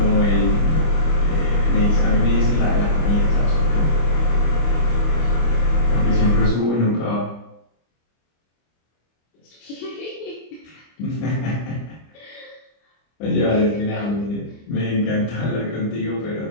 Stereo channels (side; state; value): right; late; 25 ms